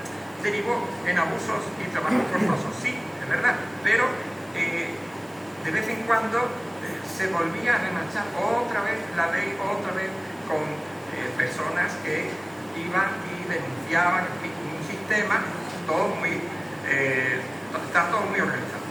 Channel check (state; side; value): noise; right; hiss, 27 dB below the sound